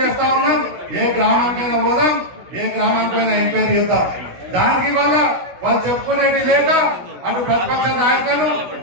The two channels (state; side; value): late; left; 16 ms